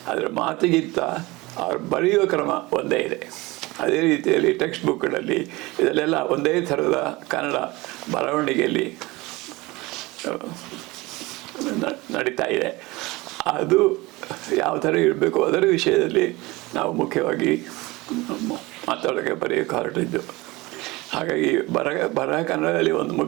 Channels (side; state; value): left; quieter; 21.8 dB